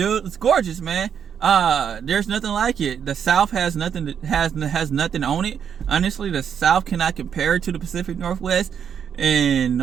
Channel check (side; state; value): left; quieter; 8.0 dB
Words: It's gorgeous, man. There's nothing like it. The South has nothing has nothing on it. Honestly, the South cannot compare to the Pacific Northwest in